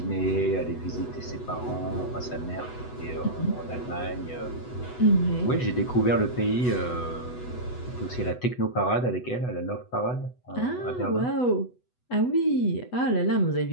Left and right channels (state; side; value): late; right; 8.1 ms